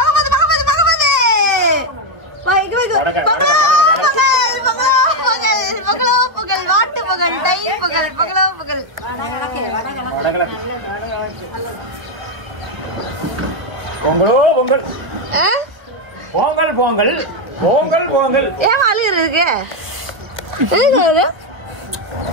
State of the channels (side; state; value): left; late; 1.2 ms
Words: பகவதி பகவதி பொங்கல் வாட்டு பொங்கல் தை பொங்கல் பொங்கலோ பொங்கல் பொங்கலோ பொங்கல் பொங்கல் பொங்கல் பொங்கல் பொங்கல். ஏன் அழுகுறதுக்கு?